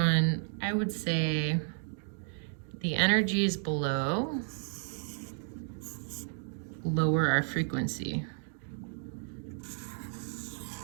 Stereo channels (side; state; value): left; silent; 56 dB below the other